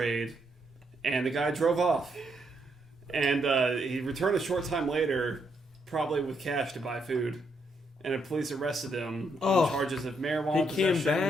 and the guy drove off, and he returned a short time later, probably with cash to buy food, and the police arrested him on charges of marijuana. he came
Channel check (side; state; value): both; normal; correlation 0.76